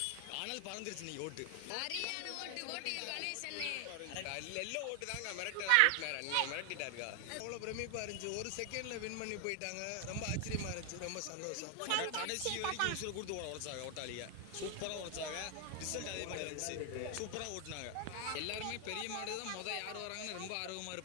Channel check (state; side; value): different; both; correlation 0.00